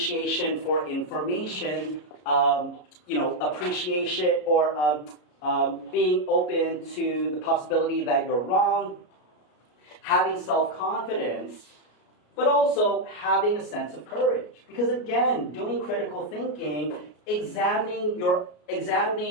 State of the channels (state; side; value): late; right; 33 ms